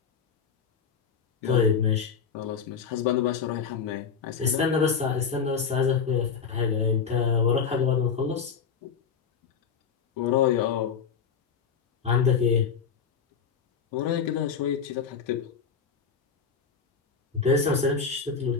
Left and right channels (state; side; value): quieter; right; 6.3 dB